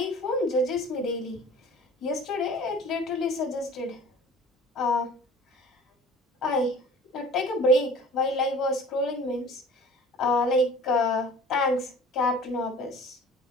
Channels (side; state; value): both; normal; correlation 0.45